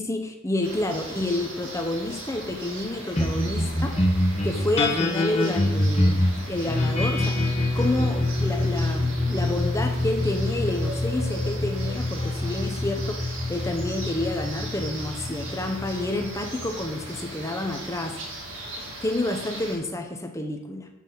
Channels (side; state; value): both; normal; correlation 0.78